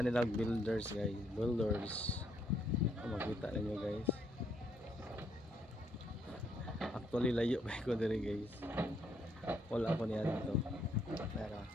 nila builders guys, makita ninyo guys. Actually layo kay ko diri guys, wala ko niya dito pero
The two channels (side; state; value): both; normal; correlation 0.72